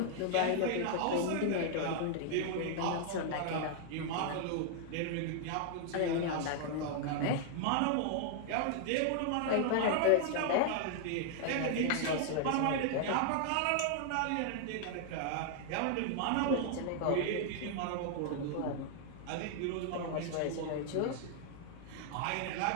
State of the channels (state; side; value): different; both; correlation 0.00